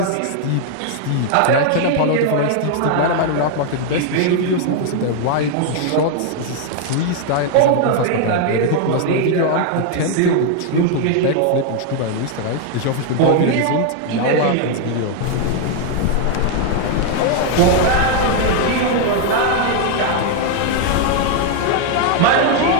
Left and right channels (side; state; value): both; different; correlation 0.00